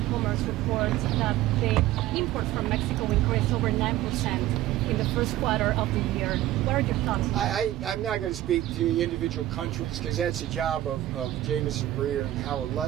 Commerce reports that the imports from Mexico increased over 9% in the first quarter of the year. What are your thoughts? I'm not going to speak to individual countries because that's the job of Jameson Breer and Howard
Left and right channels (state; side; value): quieter; left; 14.6 dB